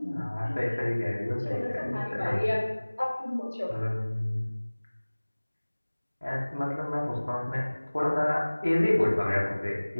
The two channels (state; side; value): inverted; both; correlation -1.00